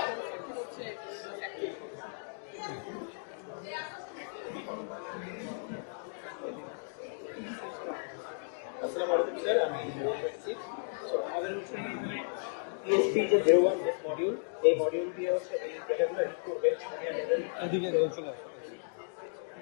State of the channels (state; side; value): silent; right; digital silence